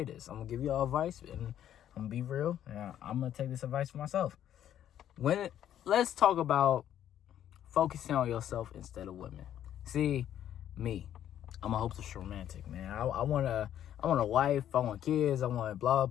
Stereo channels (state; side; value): quieter; right; 10.8 dB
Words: this. I'm going to give you all advice, and I'm going to be real. And I'm going to take this advice for myself. Let's talk about focusing on yourself instead of women. See, me, I'm a hopeless romantic, man. I want a wife. I want kids. I want blah,